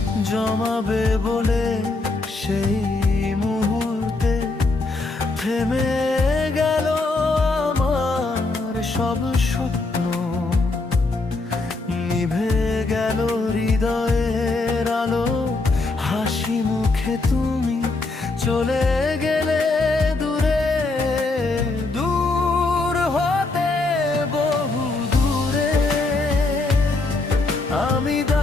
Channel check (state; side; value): quieter; right; 3.4 dB